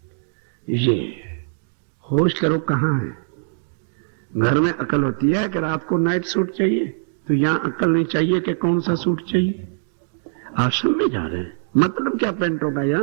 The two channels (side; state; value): left; silent; digital silence